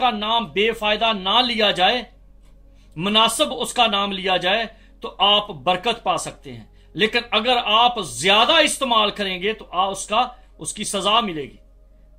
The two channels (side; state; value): both; identical; correlation 1.00